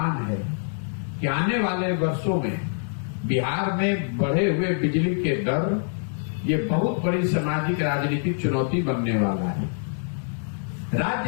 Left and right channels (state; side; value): silent; right; digital silence